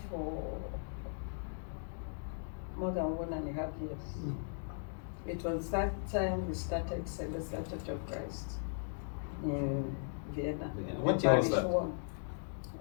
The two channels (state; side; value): silent; right; digital silence